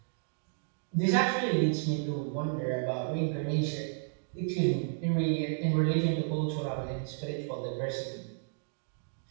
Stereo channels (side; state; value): left; silent; digital silence